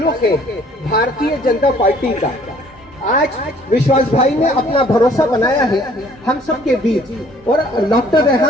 है भारतीय जनता पार्टी का, आज विश्वास भाई ने अपना भरोसा बनाया है हम सब के बीच। और डॉक्टर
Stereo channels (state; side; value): normal; both; correlation 0.58